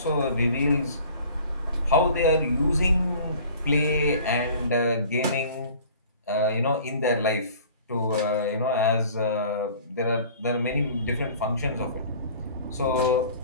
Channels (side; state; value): both; inverted; correlation -0.48